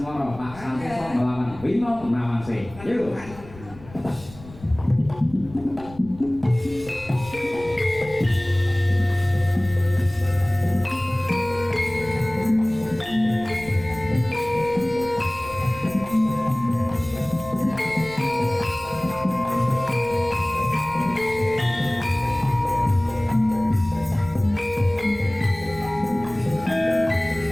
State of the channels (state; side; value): noise; left; rumble, 18 dB below the sound